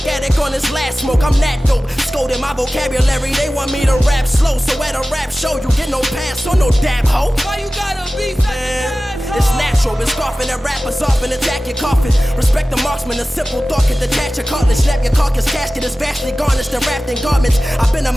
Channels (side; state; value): both; normal; correlation 0.96